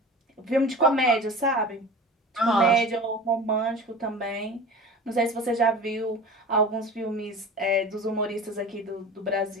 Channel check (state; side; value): normal; both; correlation 0.36